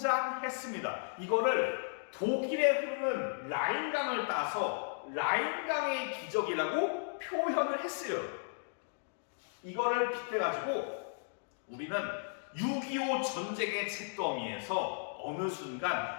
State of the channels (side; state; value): right; silent; digital silence